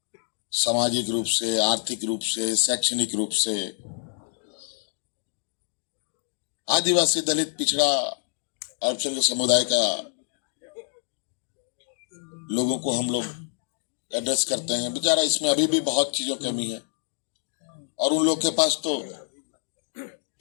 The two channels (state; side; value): silent; right; digital silence